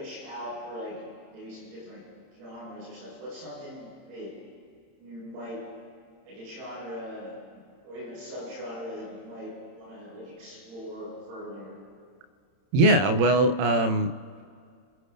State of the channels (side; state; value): left; late; 31 ms